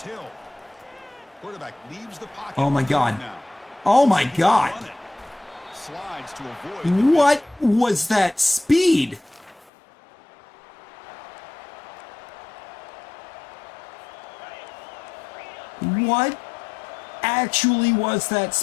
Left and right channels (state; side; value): drops out; right; at 9.7 s